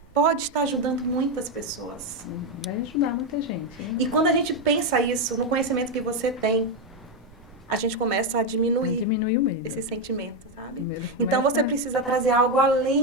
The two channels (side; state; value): both; normal; correlation 0.06